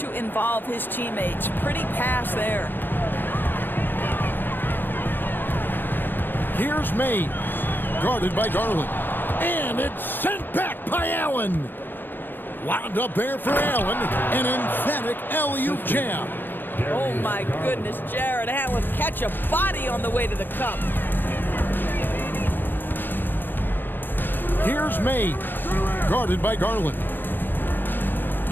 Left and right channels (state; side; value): late; right; 0.094 ms